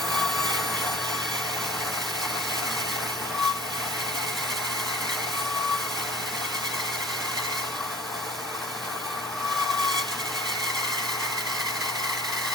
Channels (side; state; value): both; normal; correlation 0.47